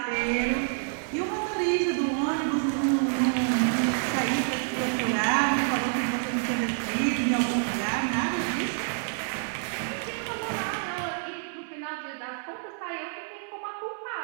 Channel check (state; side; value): silent; left; 59 dB below the other